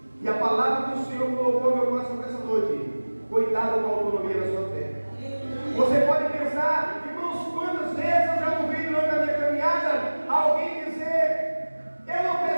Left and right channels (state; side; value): inverted; both; correlation -1.00